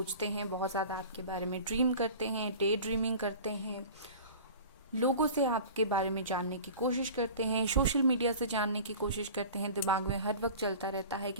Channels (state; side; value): inverted; both; correlation -0.39